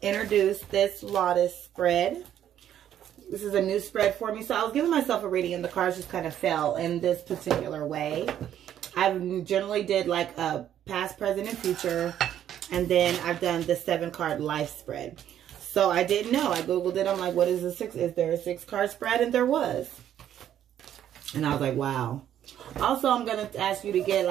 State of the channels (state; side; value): quieter; left; 10.7 dB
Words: introduce this lotus spread. This is a new spread for me. So I was giving myself a reading and the cards just kind of fell in this particular way. I generally did like a past, present, and future. And then I've done the 7-card life spread. So I didn't know. I Googled it. I'm like, what is a 6? Is there a 6-card spread? And there was. And I was like, wow. Also, I'm going to ask you to get